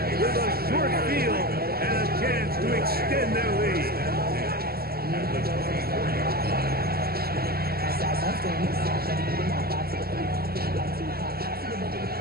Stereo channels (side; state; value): left; late; 0.45 ms